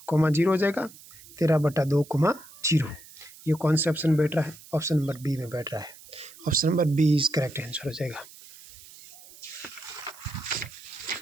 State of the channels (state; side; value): noise; right; hiss, 20 dB below the sound